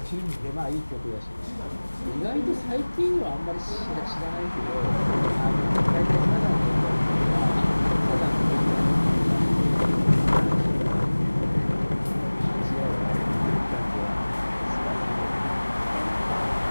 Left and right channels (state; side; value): inverted; both; correlation -1.00